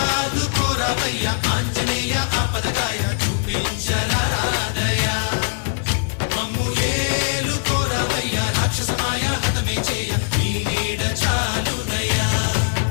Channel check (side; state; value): right; silent; digital silence